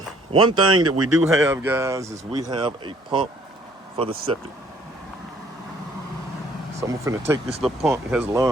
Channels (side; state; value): both; normal; correlation 0.60